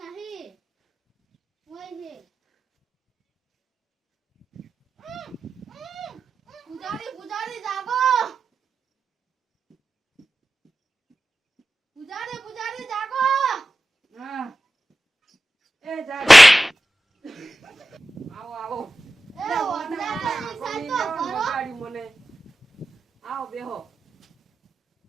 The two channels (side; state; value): both; normal; correlation 0.93